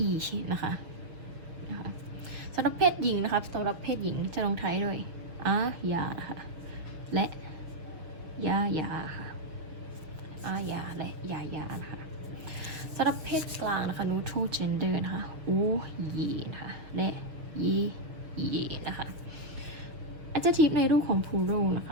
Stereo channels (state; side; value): late; left; 6.3 ms